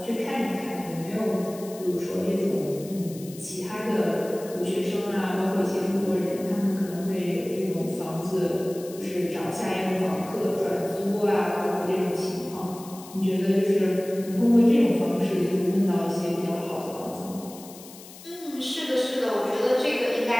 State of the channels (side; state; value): left; noise; hiss, 18 dB below the sound